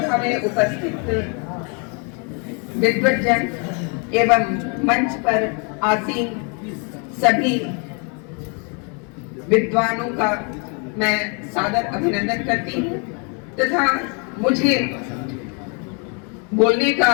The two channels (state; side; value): quieter; right; 36.0 dB